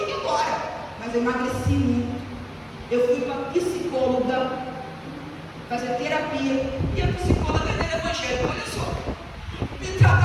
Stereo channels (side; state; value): both; identical; correlation 1.00